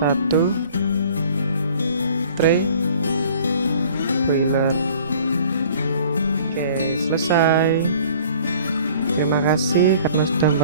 tray boiler. Oke, selesai. Terima kasih karena sudah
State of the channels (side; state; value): both; inverted; correlation -0.51